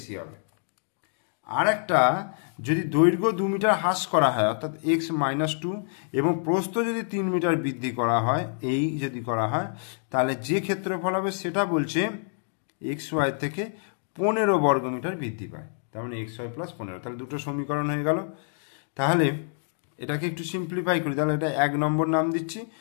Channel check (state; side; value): silent; right; digital silence